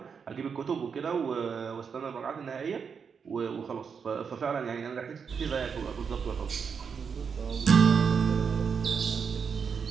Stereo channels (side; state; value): left; quieter; 6.3 dB